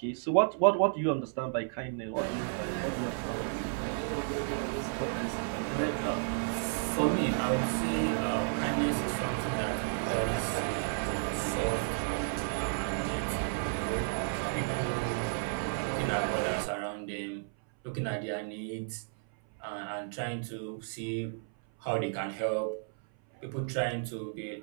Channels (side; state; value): left; silent; 56 dB below the other